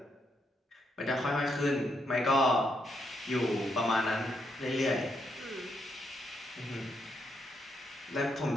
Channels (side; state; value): both; normal; correlation 0.78